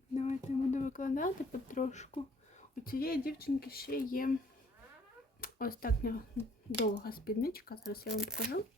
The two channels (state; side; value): normal; both; correlation 0.60